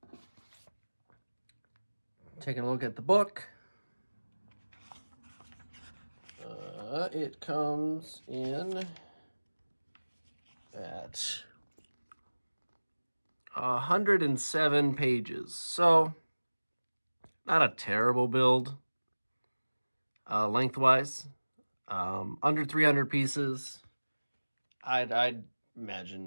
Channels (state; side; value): inverted; both; correlation -1.00